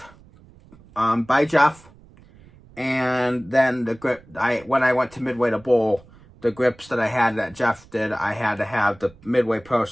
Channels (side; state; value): right; noise; rumble, 25 dB below the sound